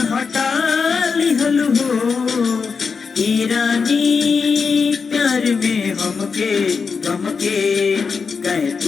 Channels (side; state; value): right; quieter; 5.4 dB